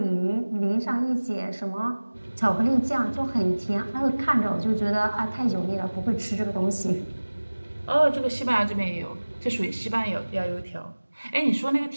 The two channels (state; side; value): inverted; both; correlation -1.00